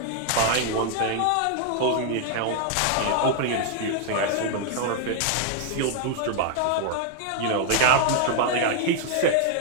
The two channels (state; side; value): different; both; correlation 0.00